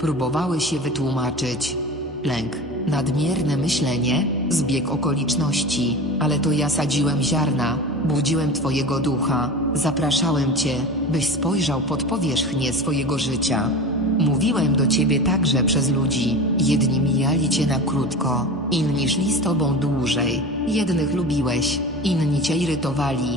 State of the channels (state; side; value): normal; both; correlation 0.32